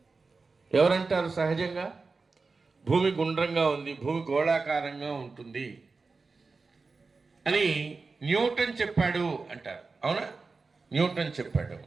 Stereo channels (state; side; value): quieter; left; 4.2 dB